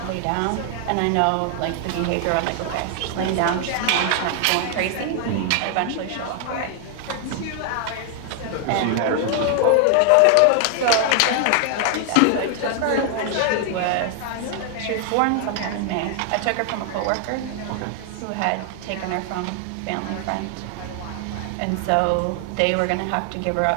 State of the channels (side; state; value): both; different; correlation 0.00